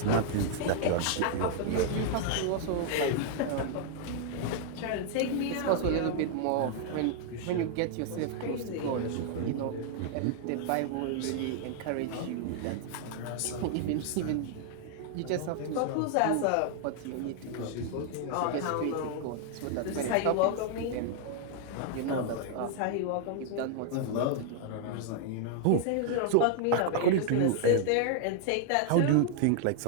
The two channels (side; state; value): both; different; correlation -0.01